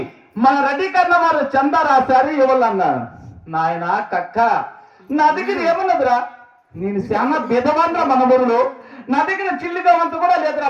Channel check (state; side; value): identical; both; correlation 1.00